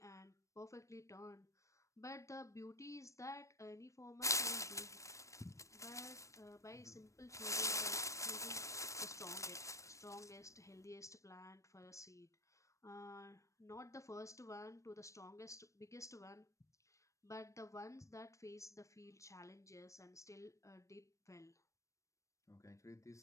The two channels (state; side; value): late; right; 0.15 ms